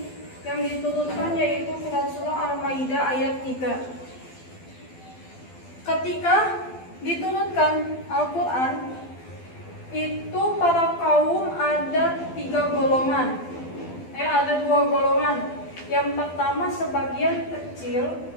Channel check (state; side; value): late; right; 12 ms